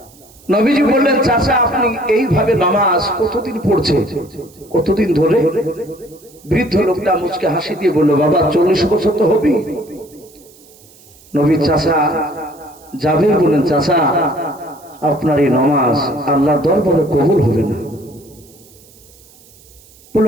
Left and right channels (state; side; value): noise; right; hiss, 26 dB below the sound